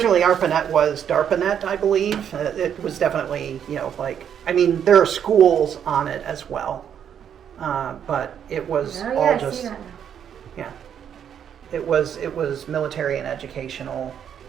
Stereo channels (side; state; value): left; quieter; 8.7 dB